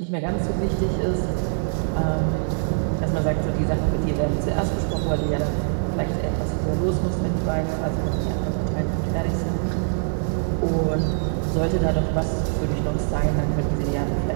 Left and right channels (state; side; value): silent; left; digital silence